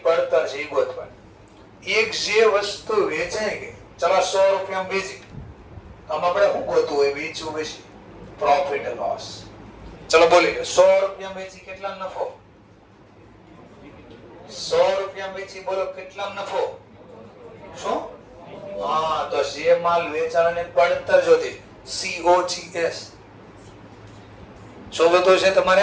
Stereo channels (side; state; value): both; identical; correlation 1.00